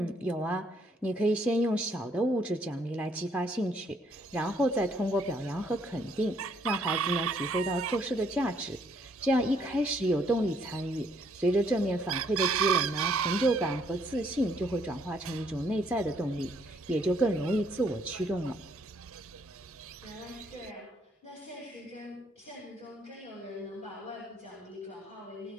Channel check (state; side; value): normal; both; correlation 0.68